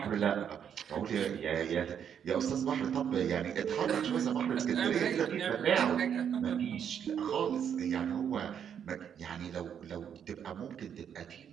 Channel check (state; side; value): quieter; left; 8.4 dB